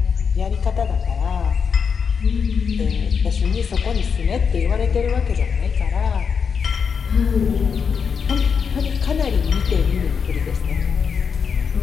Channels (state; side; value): quieter; right; 6.3 dB